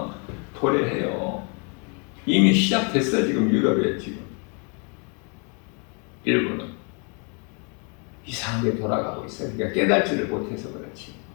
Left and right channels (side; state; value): right; quieter; 36.0 dB